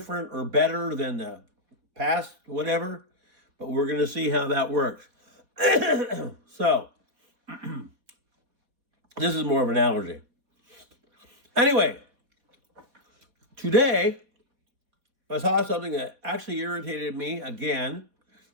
or better than the past, whatever, but we're going to see how that works. So, this is more of an analogy. Anyway, today, I saw something that actually irritated me again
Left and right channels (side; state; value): left; late; 4.2 ms